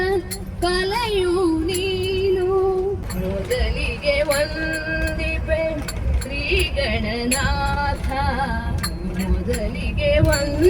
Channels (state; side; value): identical; both; correlation 1.00